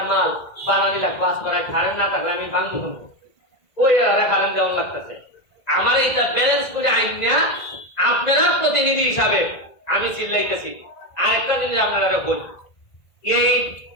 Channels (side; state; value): right; late; 1.5 ms